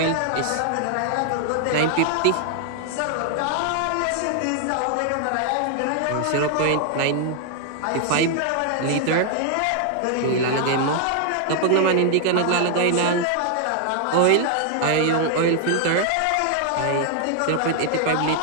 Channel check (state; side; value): different; both; correlation 0.00